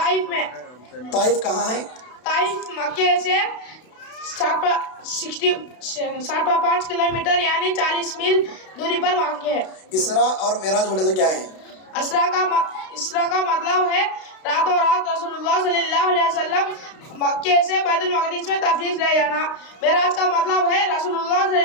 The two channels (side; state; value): right; late; 32 ms